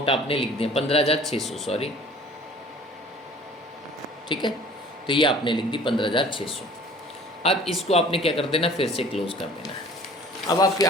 आपने लिख दिया 15,600, सॉरी, ठीक है, तो ये आपने लिख दी 15,600। अब इसको आपने क्या कर देना, फिर से क्लोज कर देना है। अब आपकी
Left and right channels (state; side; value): normal; both; correlation 0.49